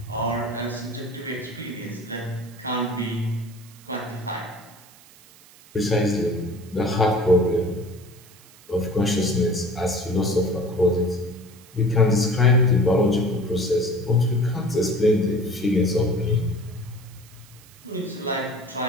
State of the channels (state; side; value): noise; right; hiss, 24 dB below the sound